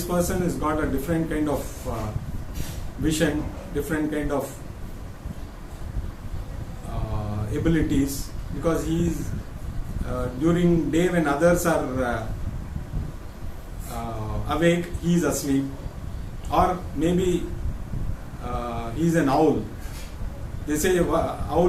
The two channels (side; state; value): both; identical; correlation 1.00